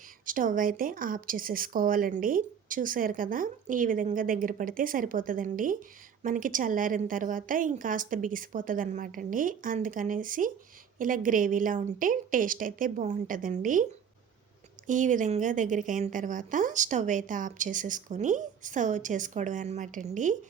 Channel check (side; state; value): left; quieter; 7.6 dB